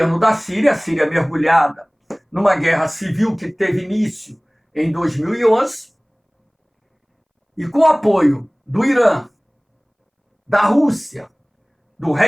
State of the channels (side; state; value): both; identical; correlation 1.00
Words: da Síria, a Síria mergulhada numa guerra civil que teve início em 2011, e com apoio do Irã, da Rússia, do